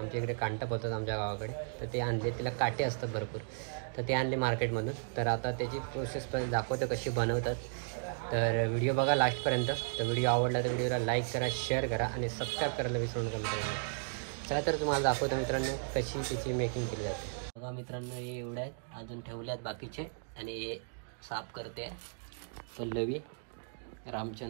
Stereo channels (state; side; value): silent; left; digital silence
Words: इकडे कांटा बोलतात आमच्या गावाकडे. तर ते आणले, तिला काटे असतात भरपूर, तर ते आणले मार्केटमधून. तर आता त्याची प्रोसेस पण दाखवतो कशी बनवतात. तर व्हिडिओ बघा लास्टपर्यंत. तर व्हिडिओ आवडला तर व्हिडिओला लाईक करा, शेअर करा आणि सबस्क्राईब करायला विसरू नका मित्रांनो. चला तर तुम्हाला दाखवतो मित्रांनो कशी त्याची मेकिंग केली जाते. बघा मित्रांनो, हे एवढे आहेत, अजून ठेवले आहेत बाकीचे. आणि हे साफ करते पल्लवी,